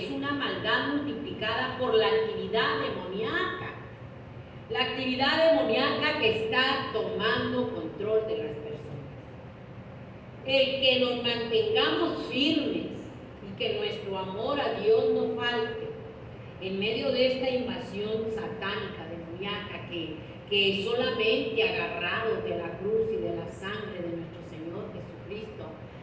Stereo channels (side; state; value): both; identical; correlation 1.00